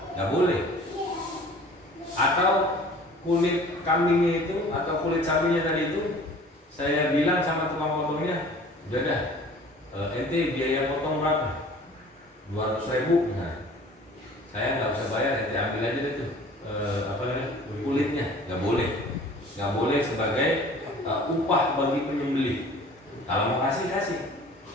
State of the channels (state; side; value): normal; both; correlation 0.47